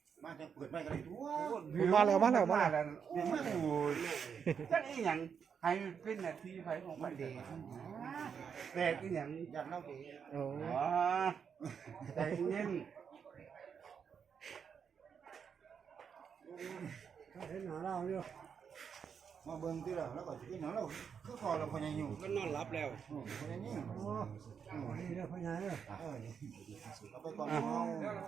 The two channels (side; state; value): left; quieter; 6.9 dB